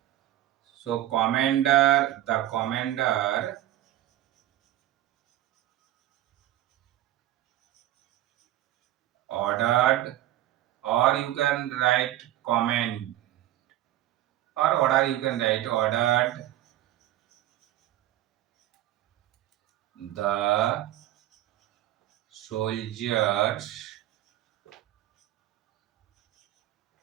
So the commander ordered, or you can write command, or order you can write ordered the soldiers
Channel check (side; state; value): left; quieter; 13.8 dB